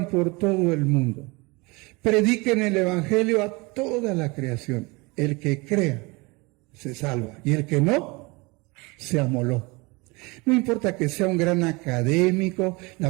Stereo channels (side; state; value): left; quieter; 25.9 dB